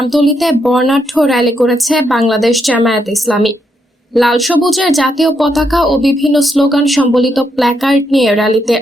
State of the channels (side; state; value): both; normal; correlation 0.78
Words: বর্ণাঢ্য র্যালি করেছে বাংলাদেশ জামায়াতে ইসলামী। লাল সবুজের জাতীয় পতাকা ও বিভিন্ন স্লোগান সম্বলিত প্ল্যাকার্ড নিয়ে র্যালিতে